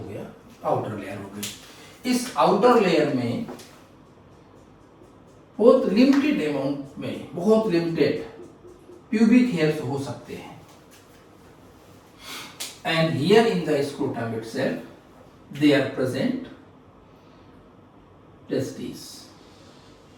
गया, आउटर लेयर हो गई। इस आउटर लेयर में बहुत लिमिटेड अमाउंट में, बहुत लिमिटेड प्यूबिक हेयर्स हो सकते हैं। And here in the scrotum itself they are present testis.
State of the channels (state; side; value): identical; both; correlation 1.00